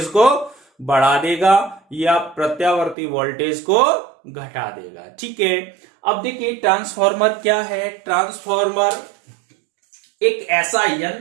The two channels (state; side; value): drops out; left; at 3.0 s